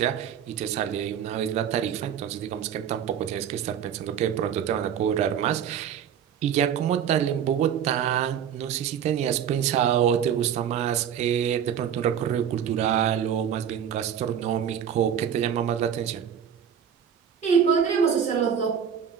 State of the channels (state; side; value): quieter; left; 8.6 dB